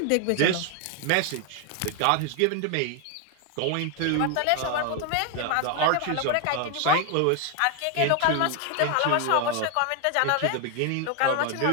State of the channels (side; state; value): both; different; correlation 0.01